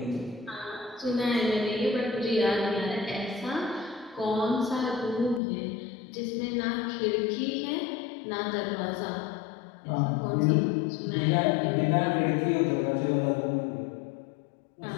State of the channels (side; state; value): right; drops out; at 5.4 s